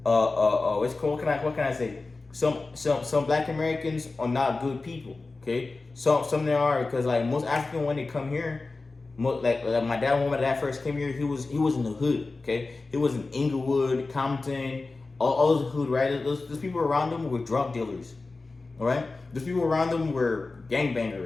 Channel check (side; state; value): right; quieter; 3.6 dB